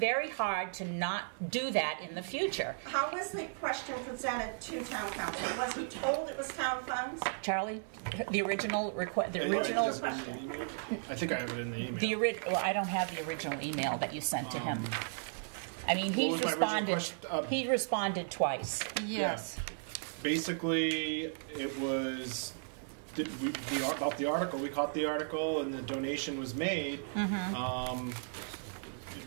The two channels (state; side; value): silent; left; 54 dB below the other